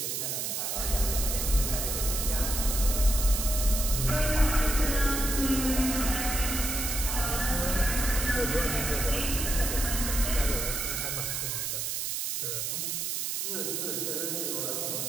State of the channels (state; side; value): noise; right; hiss, 1 dB below the sound